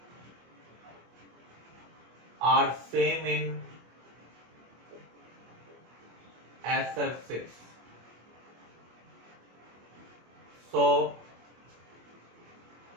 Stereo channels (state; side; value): late; left; 24 ms